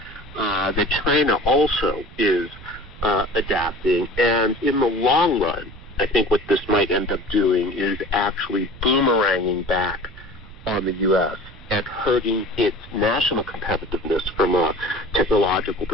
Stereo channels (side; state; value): right; noise; rumble, 18 dB below the sound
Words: that China also is adapting. And in the long run, I think what this might end up doing is actually boomeranging back on the U.S. and hurting its national competitiveness from a technological